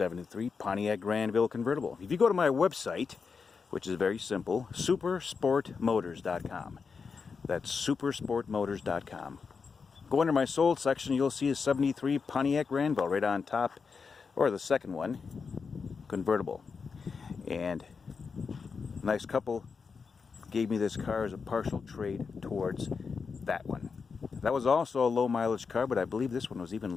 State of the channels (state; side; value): quieter; right; 5.3 dB